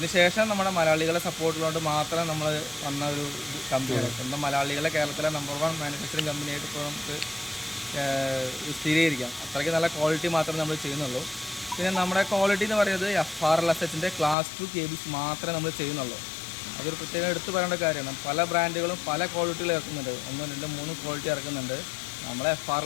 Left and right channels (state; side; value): drops out; right; at 14.4 s